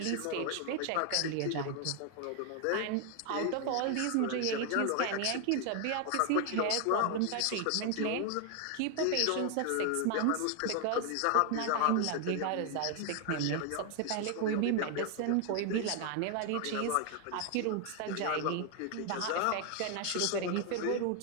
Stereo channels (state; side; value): different; both; correlation 0.00